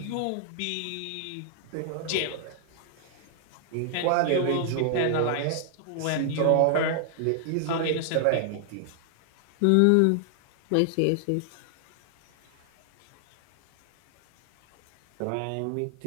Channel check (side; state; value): both; different; correlation 0.00